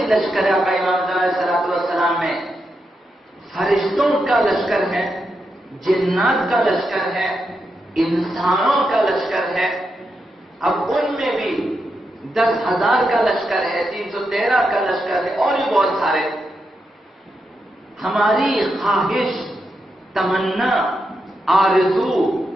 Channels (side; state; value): both; normal; correlation 0.85